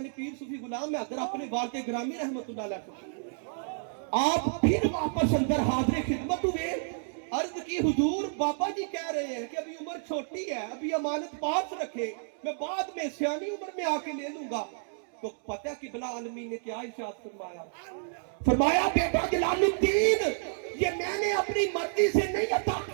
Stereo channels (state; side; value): silent; left; digital silence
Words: نے پیر صوفی غلام حیدر اپنے والد گرامی رحمت اللہ علیہ کو, آپ پھر واپس اندر حاضر خدمت ہوئے, عرض کی حضور بابا جی کہہ رہے ہیں کہ ابھی عمر چھوٹی ہے, ابھی امانت پاس رکھے, میں بعد میں سیانی عمر میں آ کے لے لوں گا. تو پتہ قبلہ عالمین نے کیا ارشاد فرمایا, فرمایا بیٹا جلال الدین یہ میں نے اپنی مرضی سے نہیں عطا